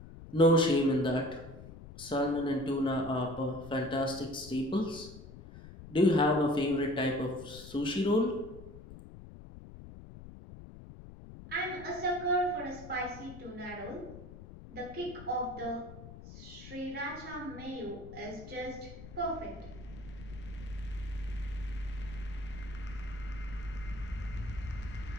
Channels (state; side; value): noise; left; rumble, 15 dB below the sound